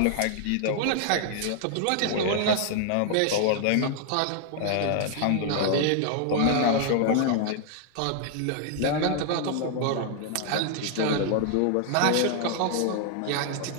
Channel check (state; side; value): different; both; correlation 0.00